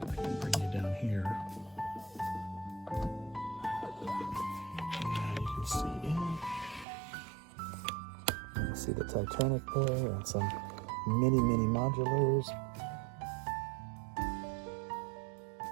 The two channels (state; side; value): drops out; left; at 6.9 s